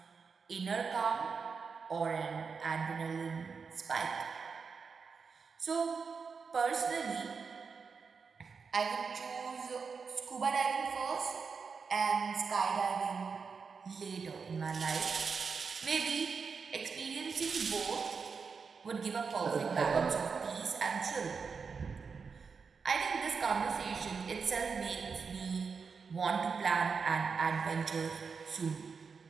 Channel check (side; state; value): left; quieter; 5.4 dB